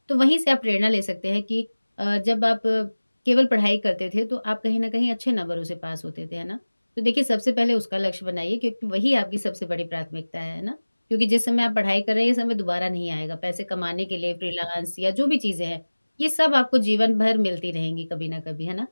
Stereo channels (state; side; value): inverted; both; correlation -1.00